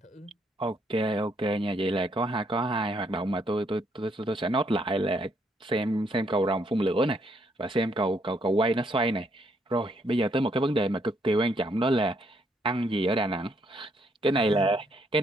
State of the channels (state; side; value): normal; both; correlation 0.72